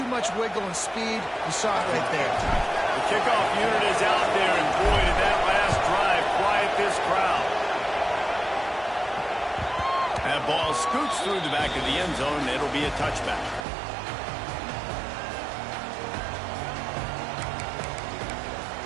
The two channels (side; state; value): left; drops out; at 13.7 s